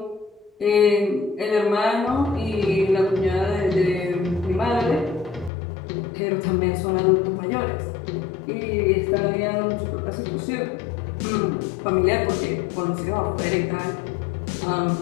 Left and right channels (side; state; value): right; drops out; at 5.5 s